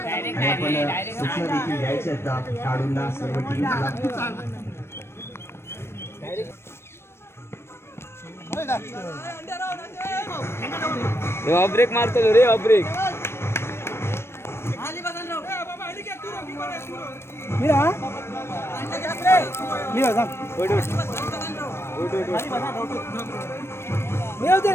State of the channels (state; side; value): late; right; 0.12 ms